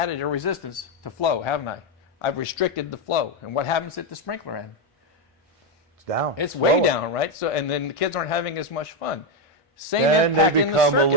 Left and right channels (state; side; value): normal; both; correlation 0.06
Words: a resistance to flow, haven't I? I've restricted the flow. And what happens at the sprinkler end? It's down. It's way lower. down, right? So, and then the kids aren't having as much fun. Same And impact they in the become a circuit.